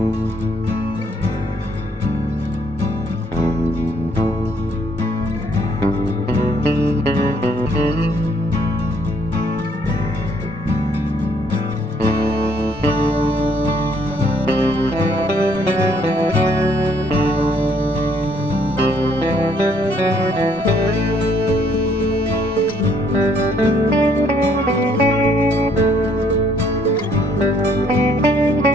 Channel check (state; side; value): normal; both; correlation 0.66